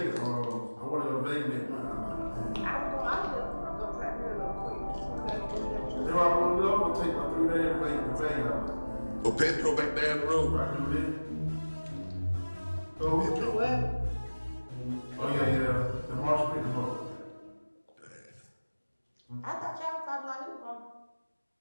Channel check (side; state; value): both; inverted; correlation -1.00